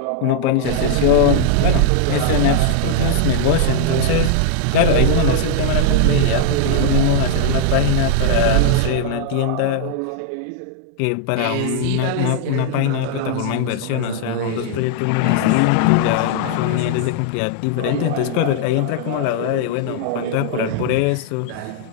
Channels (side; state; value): both; different; correlation 0.00